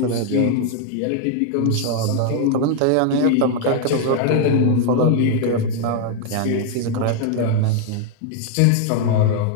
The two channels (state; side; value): different; both; correlation 0.00